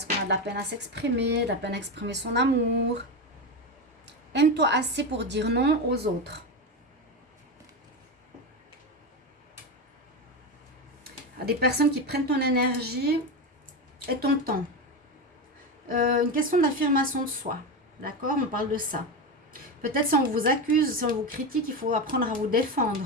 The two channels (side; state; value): both; normal; correlation 0.17